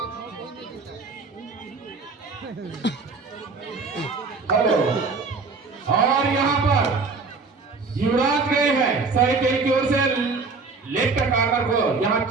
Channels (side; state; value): left; quieter; 4.3 dB